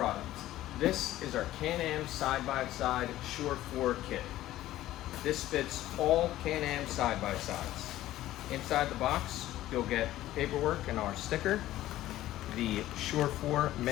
This is our Can-Am side-by-side Sure 4 kit. This fits all Can-Am side-by-sides. Inside the box, you'll get paperwork and our sticker, the Sure 4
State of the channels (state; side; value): quieter; right; 14.7 dB